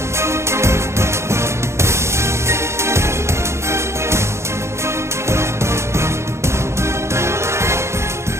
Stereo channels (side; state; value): left; late; 0.13 ms